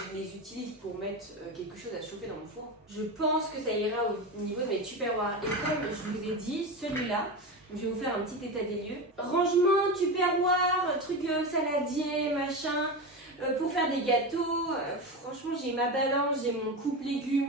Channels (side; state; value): both; normal; correlation 0.21